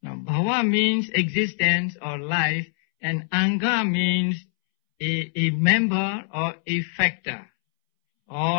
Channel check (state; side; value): silent; right; 63 dB below the other